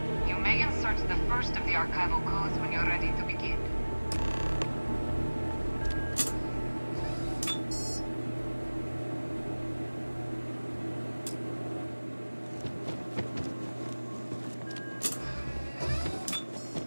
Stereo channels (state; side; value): inverted; both; correlation -1.00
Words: You may insert the first of the archival codes when you're ready to begin.